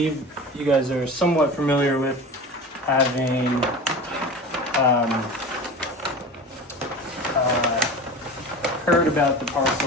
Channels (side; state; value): both; normal; correlation 0.33